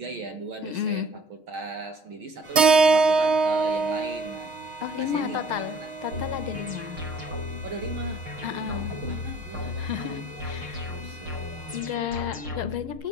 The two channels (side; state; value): left; late; 6.4 ms